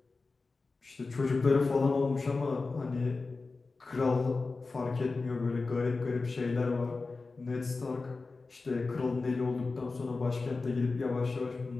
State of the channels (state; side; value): quieter; right; 3.9 dB